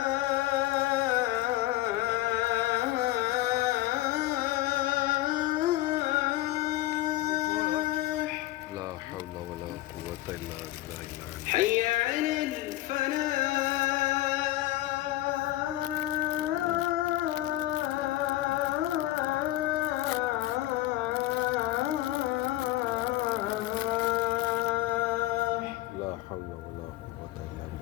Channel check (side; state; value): right; quieter; 16.4 dB